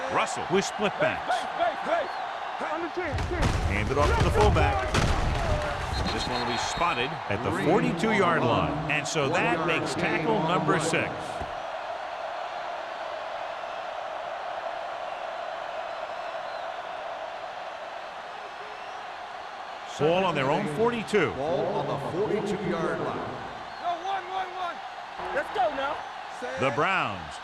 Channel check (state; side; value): identical; both; correlation 1.00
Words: Russell with split backs. Base. On the 10. Hand it off to the fullback. This one will be spotted at the 42-yard line. And so that makes tackle number 6. Ball on their own 42. Ball on the 42-yard line. No, 1. Let's go now. The Browns